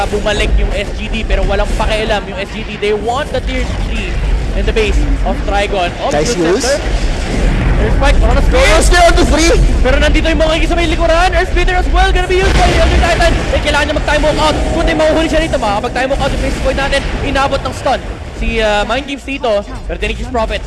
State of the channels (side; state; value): both; identical; correlation 1.00